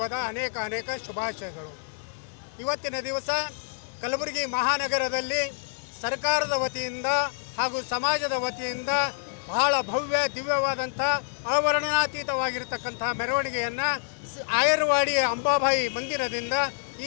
ಅನೇಕ ಶುಭಾಶಯಗಳು. ಇವತ್ತಿನ ದಿವಸ ಕಲಬುರಗಿ ಮಹಾನಗರದಲ್ಲಿ ಸರ್ಕಾರದ ವತಿಯಿಂದ ಹಾಗೂ ಸಮಾಜದ ವತಿಯಿಂದ ಬಹಳ ಭವ್ಯ ದಿವ್ಯವಾದಂಥ ಅವರ್ಣನಾತೀತವಾಗಿರತಕ್ಕಂಥ ಮೆರವಣಿಗೆಯನ್ನು ಆಯರ್ವಾಡಿ ಅಂಬಾಬಾಯಿ ಮಂದಿರದಿಂದ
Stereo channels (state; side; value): silent; right; digital silence